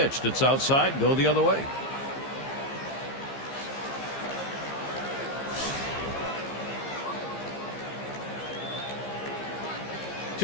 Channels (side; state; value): right; late; 15 ms